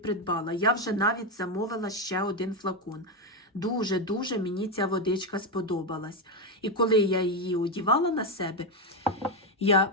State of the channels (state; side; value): normal; both; correlation 0.08